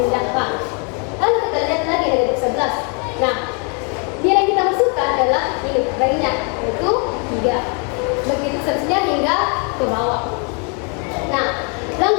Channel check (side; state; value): right; quieter; 37.0 dB